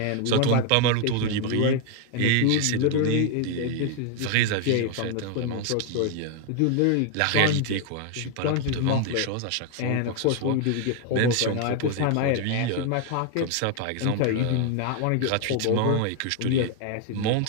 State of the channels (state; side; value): different; both; correlation 0.01